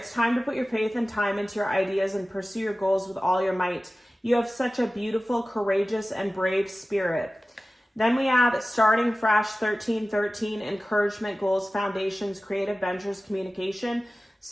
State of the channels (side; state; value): both; normal; correlation 0.96